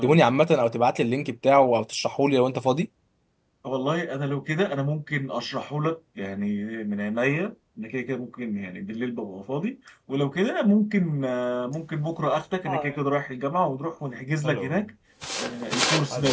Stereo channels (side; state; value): both; identical; correlation 1.00